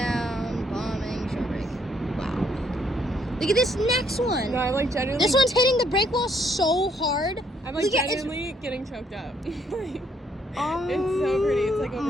Bombing. Shore break. Wow. Look at this next one. No, I'm like genuinely. This one's hitting the brake wall so hard. I'm like Look at- genuinely getting choked up. Oh It's so pretty. It's like overwhelming.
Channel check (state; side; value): normal; both; correlation 0.69